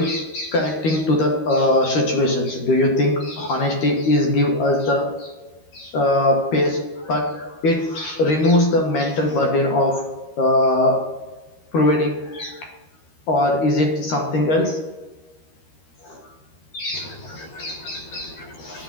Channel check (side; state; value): right; late; 13 ms